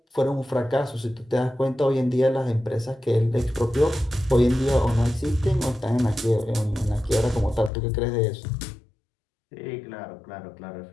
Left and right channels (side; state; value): right; drops out; at 7.7 s